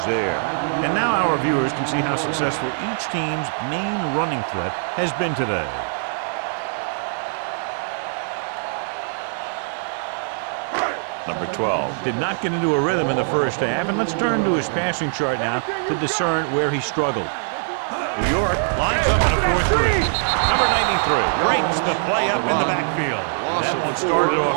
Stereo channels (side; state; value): left; silent; digital silence